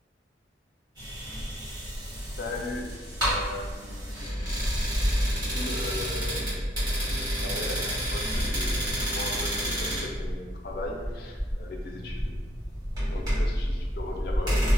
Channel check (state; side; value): normal; both; correlation 0.68